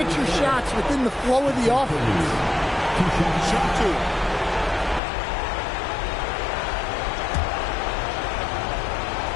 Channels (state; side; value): drops out; right; at 5.0 s